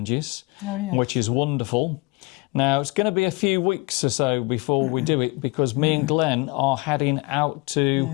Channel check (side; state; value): right; quieter; 26.4 dB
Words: which is wonderful. Now, it's going to be a few weeks or so before we do it because me and Glenn are heading out